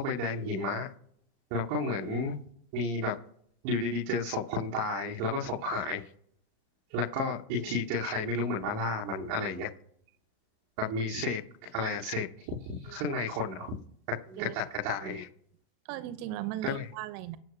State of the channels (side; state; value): left; late; 37 ms